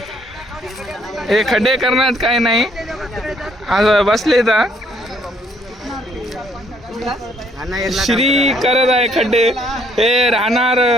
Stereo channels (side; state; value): both; normal; correlation 0.66